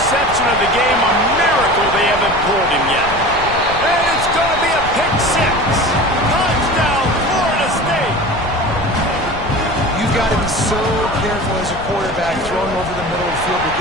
of the game. A miracle they haven't pulled him yet. And it's going to be a pick 6. Touchdown, Florida State. You've got to be so careful as a quarterback throwing over the middle of the field with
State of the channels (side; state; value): left; noise; rumble, 11 dB below the sound